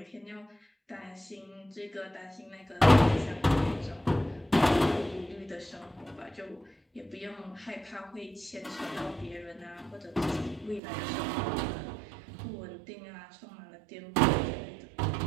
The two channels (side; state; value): left; drops out; at 10.8 s